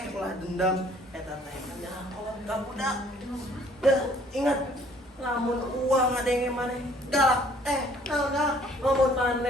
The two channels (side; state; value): both; normal; correlation 0.58